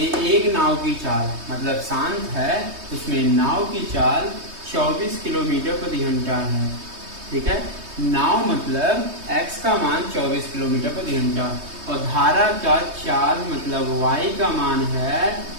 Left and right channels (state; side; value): late; left; 3.2 ms